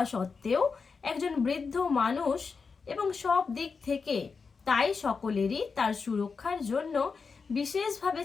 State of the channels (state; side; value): quieter; right; 5.1 dB